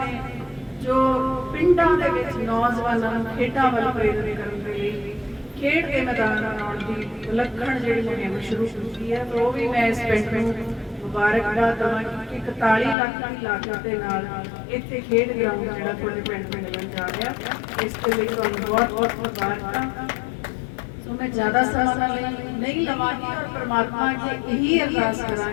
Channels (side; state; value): right; drops out; at 13.0 s